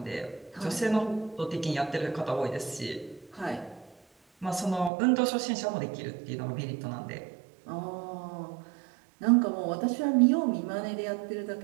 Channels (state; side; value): drops out; left; at 4.9 s